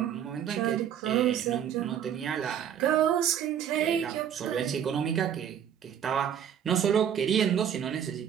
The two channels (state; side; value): quieter; left; 9.2 dB